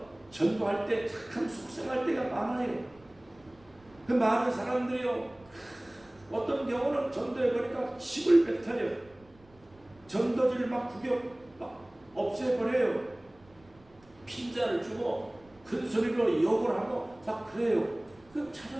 전도할 때 참 속상할 때가 많아요. 그 많은 사람들이요, 어떤 경우는 전도해보니까 힘을 뱉어요. 전도지를 막 없애버려요. 핀자를 주고 큰 소리로 욕을 하고 막 그래요. 그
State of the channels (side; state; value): right; noise; rumble, 28 dB below the sound